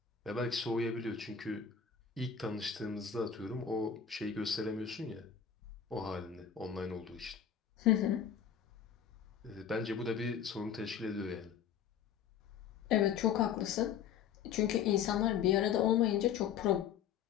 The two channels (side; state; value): right; quieter; 7.9 dB